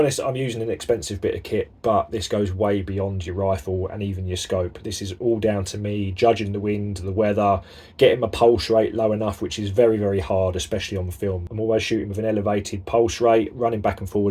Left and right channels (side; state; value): both; identical; correlation 1.00